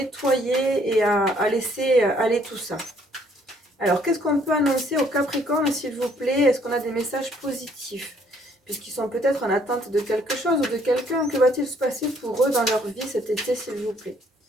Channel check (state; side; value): normal; both; correlation 0.64